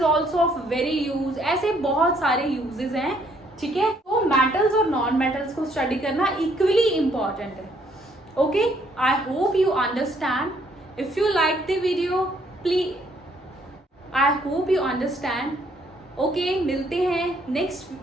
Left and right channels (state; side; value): normal; both; correlation 0.67